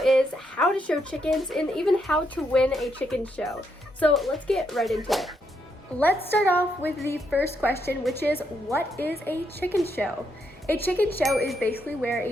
is, how to show chickens, and even how to win a chicken show. So let's get right into it. Let's start off with the first question, which is, what is a chicken show? A chicken show is basically where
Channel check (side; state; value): both; normal; correlation 0.78